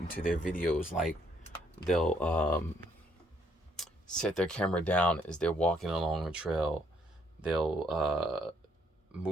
into their videos. Like they'll set their camera down as they're walking along a trail. They'll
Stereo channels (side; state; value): both; normal; correlation 0.70